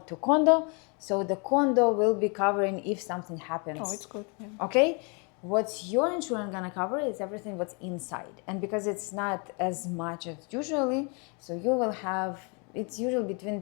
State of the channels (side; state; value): right; quieter; 34.0 dB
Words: to condo. So the condo will be covering if something happens. Oh, it's good. Yeah. Okay? What's your insurance gonna cover is everything what's inside. And because it's not as much as usually, so you will have, it's usually between